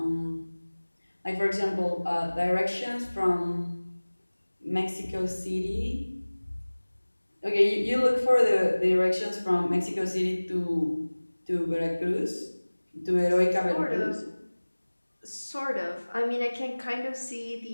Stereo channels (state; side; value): inverted; both; correlation -1.00